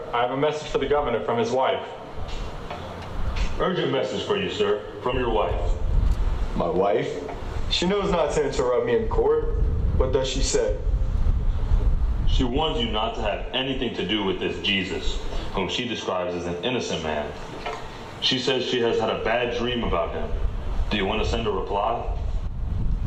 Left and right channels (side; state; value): both; identical; correlation 1.00